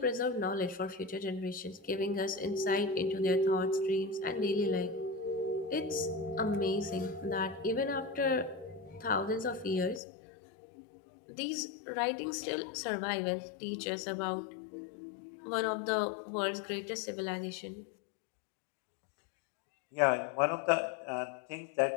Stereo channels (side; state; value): right; drops out; at 10.0 s